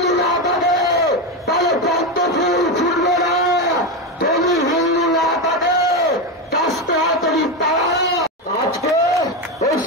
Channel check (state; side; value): normal; both; correlation 0.13